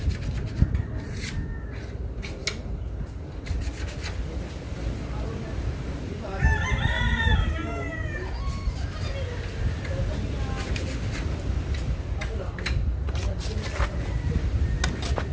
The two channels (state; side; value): identical; both; correlation 1.00